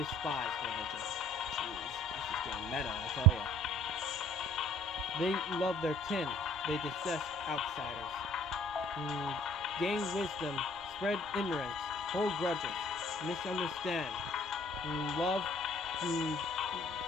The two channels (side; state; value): both; normal; correlation 0.54